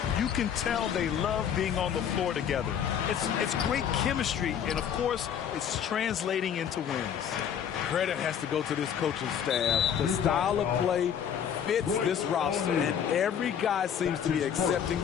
You can tell they love being on the floor together. It's great chemistry, and of course, it's translating into wins. Credit has to go to this coaching staff. The style of play fits this roster, and every guy seems to be accepting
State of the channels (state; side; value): quieter; right; 8.5 dB